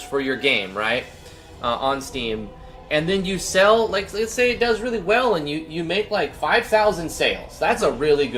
for your game, right, on Steam, and then you sell, like, let's say it does really well, and you make like 5,000 sales. That's a really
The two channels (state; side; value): identical; both; correlation 1.00